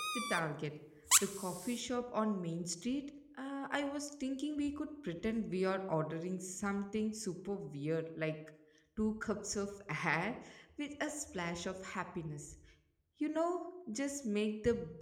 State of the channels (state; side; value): identical; both; correlation 1.00